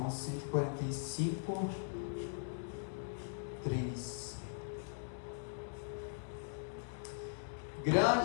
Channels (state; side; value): silent; right; digital silence